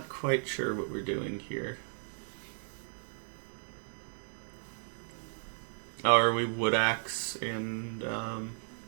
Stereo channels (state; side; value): silent; left; 55 dB below the other